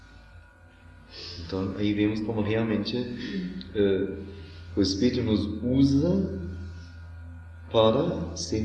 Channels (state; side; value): identical; both; correlation 1.00